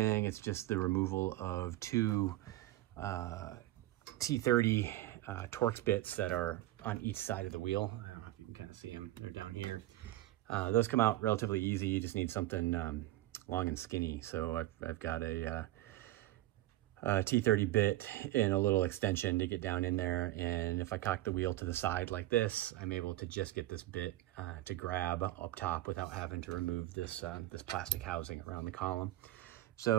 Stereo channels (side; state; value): left; quieter; 15.6 dB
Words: It's just the removal of two T30 Torx bits that are on each side of the wheel. I don't know if you can kind of see them. They're down here. Those come out relatively easy. You just need something long and skinny. So I've got a T30 bit and a little extension to get down in there. And if I cock the wheel to the side like this, I'm able to just get this bit to grab up top without having to remove this, this plastic housing around the column.